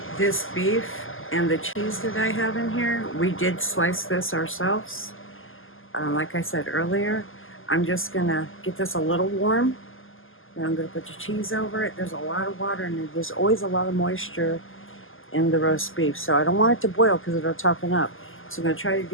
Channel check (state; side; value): late; right; 0.59 ms